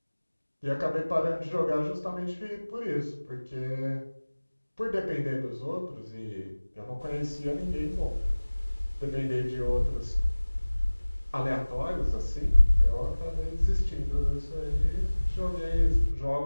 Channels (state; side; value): inverted; both; correlation -1.00